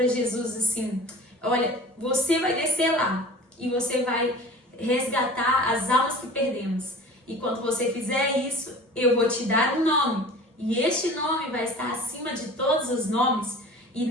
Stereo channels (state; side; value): normal; both; correlation 0.41